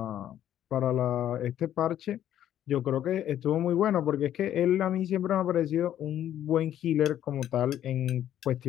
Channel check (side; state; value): right; quieter; 11.2 dB